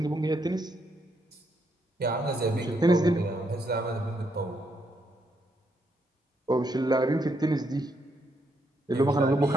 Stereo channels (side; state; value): both; normal; correlation 0.76